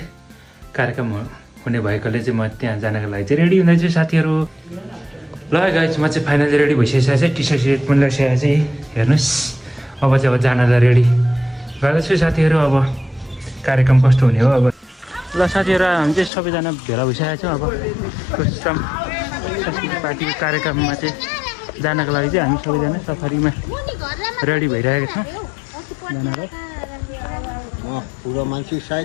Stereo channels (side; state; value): right; drops out; at 16.3 s